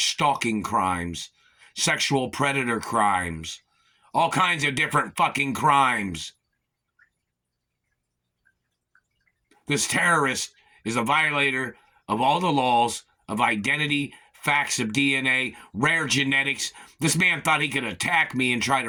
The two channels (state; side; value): identical; both; correlation 1.00